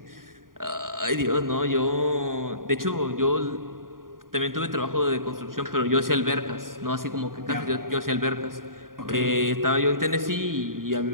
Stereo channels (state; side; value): late; left; 0.91 ms